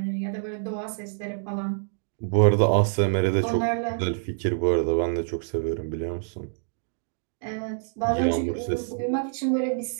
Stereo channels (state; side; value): silent; left; digital silence